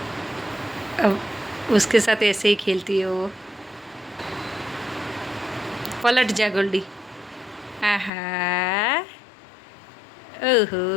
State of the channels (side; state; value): right; drops out; at 8.1 s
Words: अब उसके साथ ऐसे ही खेलती है वो। पलट जा गोल्डी। आहा,